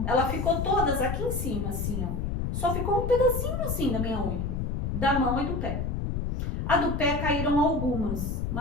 Ela ficou todas aqui em cima, assim, ó. Só ficou um pedacinho assim da minha unha, da mão e do pé. A do pé caíram algumas,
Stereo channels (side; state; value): left; noise; rumble, 2 dB below the sound